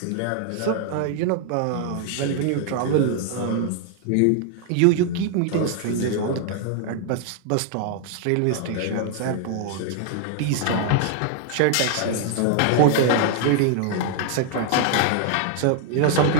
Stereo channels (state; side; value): different; both; correlation 0.00